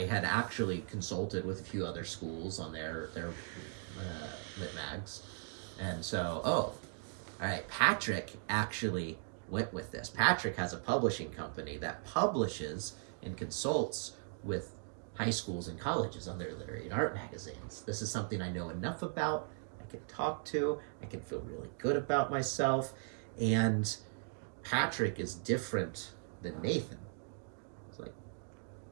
had actually consulted with a few other schools on their lit mags. And so, all right, Patrick actually went with this. Patrick has a publishing company that publishes and consults with high schools and colleges on their literary and art magazines. This is something I know enough about, I can talk to, I can feel really good about myself, and Patrick is different than Nathan. It's like,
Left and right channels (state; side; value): silent; left; 52 dB below the other